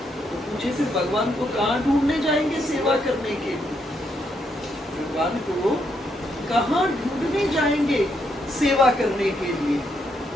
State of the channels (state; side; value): normal; both; correlation 0.77